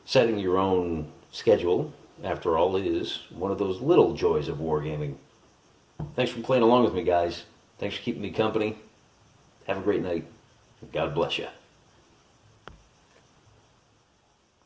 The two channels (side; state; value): both; identical; correlation 1.00